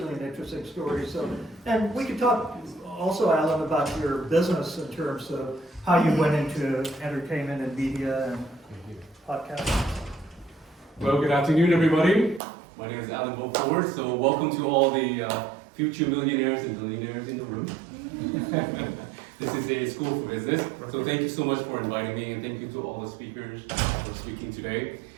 an interesting story. So, and we could talk also, Alan, about your business in terms of how you went into entertainment and media and podcasts. Well, good afternoon, everybody. My name is Alan Beaufort, so welcome to all the future millionaires and billionaires in the room. This is a school for business, so thank you so much for inviting me, and thank you to all the speakers for speaking today.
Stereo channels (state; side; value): drops out; left; at 12.4 s